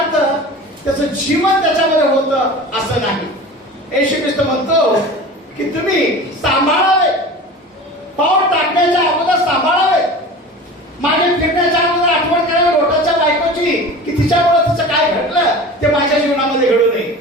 त्याचं जीवन त्याच्यामध्ये होतं असं नाही. येशू ख्रिस्त म्हणतो की तुम्ही सांभाळावे, पाऊल टाकण्याच्या अगोदर सांभाळावे. ते माझ्या जीवनामध्ये घडू नये.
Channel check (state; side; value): normal; both; correlation 0.36